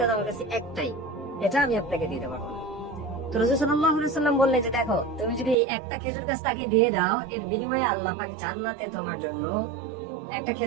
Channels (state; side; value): drops out; left; at 5.6 s